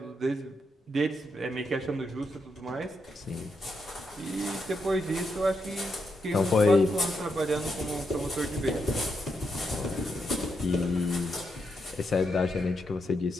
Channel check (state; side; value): normal; both; correlation 0.82